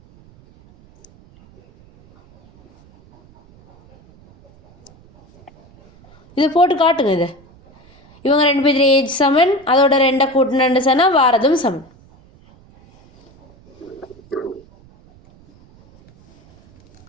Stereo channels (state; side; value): noise; right; rumble, 28 dB below the sound